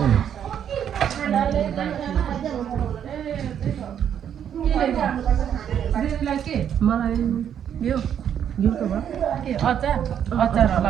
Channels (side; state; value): left; quieter; 9.1 dB